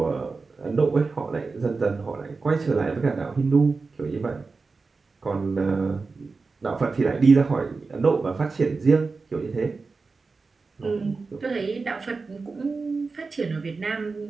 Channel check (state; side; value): quieter; left; 4.2 dB